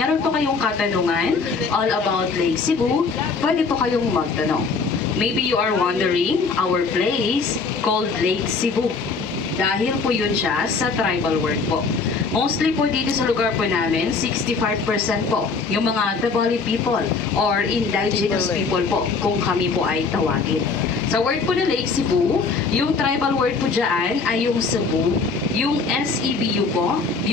po kayong katanungan all about Lake Cebu, pwede po kayong magtanong. Maybe you are wondering our place called Lake Cebu. Dahil po yun siya sa tribal word po. Mostly po dito sa lugar po namin, 65% po yung mga Tabali people or indigenous people po kung kami po ay tawagin. Sa word po na Lake Cebu, yung tribal word po dyan ay yung Cebu, yung SEBU po,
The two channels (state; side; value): quieter; right; 4.6 dB